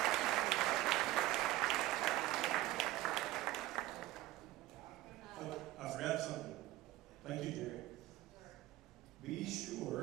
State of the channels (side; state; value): left; quieter; 16.2 dB